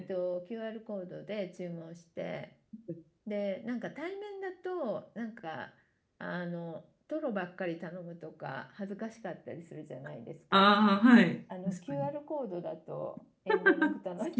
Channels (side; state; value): both; identical; correlation 1.00